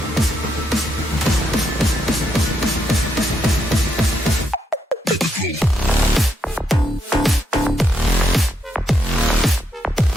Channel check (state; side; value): normal; both; correlation 0.78